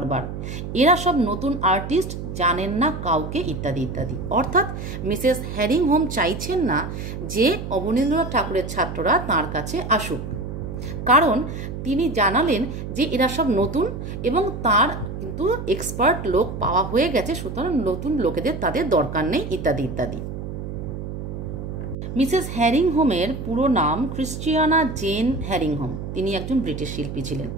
এরা সব নতুন আর্টিস্ট, জানেন না কাউকে, ইত্যাদি ইত্যাদি। অর্থাৎ মিসেস হ্যারিংহোম চাইছেন না যে অবনীন্দ্রনাথ ঠাকুরের ছাত্ররা তার কাছে আসুক, কারণ তিনি জানালেন যে এরা সব নতুন এবং তার কিন্তু এক্সপার্ট লোক পাওয়া হয়ে গেছে, সুতরাং নতুন লোকেদের তাদের দরকার নেই, ইত্যাদি ইত্যাদি। মিসেস হ্যারিংহোমের পুরো নাম ক্রিশ্চিয়ানা জেন হ্যারিংহোম। তিনি একজন ব্রিটিশ শিল্পী ছিলেন।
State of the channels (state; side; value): noise; right; hum, 7 dB below the sound